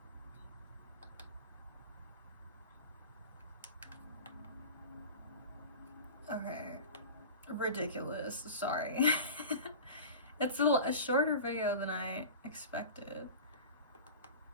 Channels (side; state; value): both; inverted; correlation -0.34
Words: Okay, ridiculous, sorry. It's a shorter video than I expected.